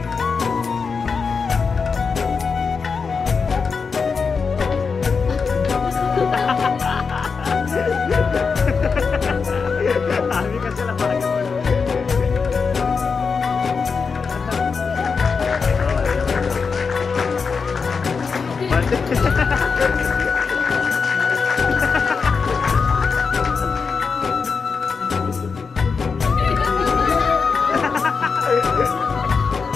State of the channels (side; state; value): right; quieter; 5.2 dB